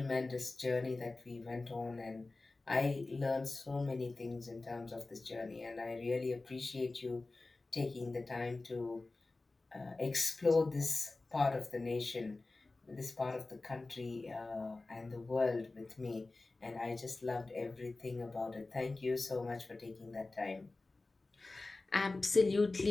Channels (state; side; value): quieter; right; 3.3 dB